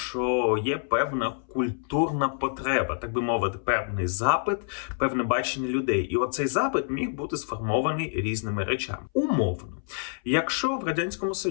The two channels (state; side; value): silent; right; 60 dB below the other